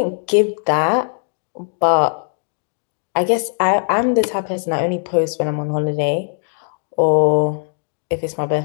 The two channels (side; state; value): right; silent; digital silence